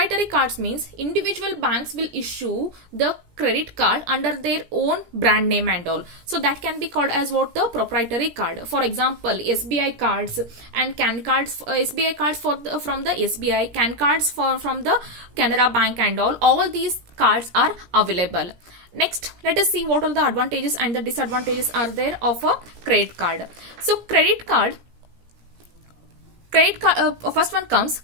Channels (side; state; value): left; late; 17 ms